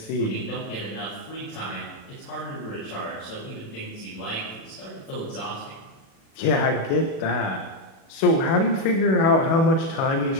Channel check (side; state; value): right; late; 36 ms